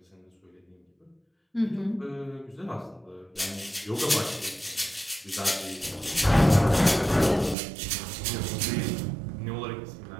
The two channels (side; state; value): left; drops out; at 7.6 s